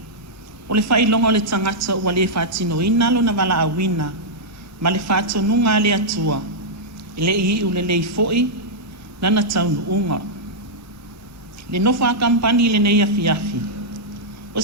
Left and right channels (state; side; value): normal; both; correlation -0.08